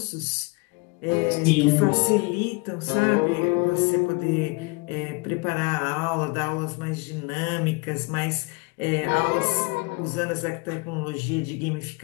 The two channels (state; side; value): quieter; right; 27.7 dB